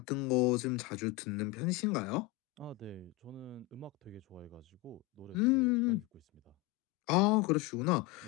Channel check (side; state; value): right; quieter; 18.7 dB